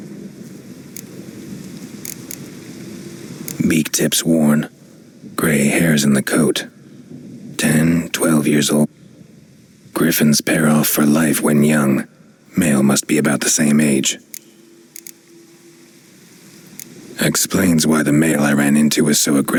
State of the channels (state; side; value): identical; both; correlation 1.00